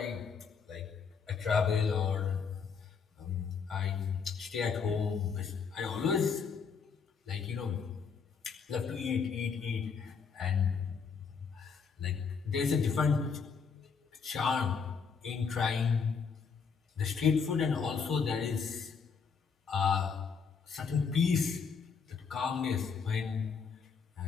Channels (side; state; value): right; quieter; 5.8 dB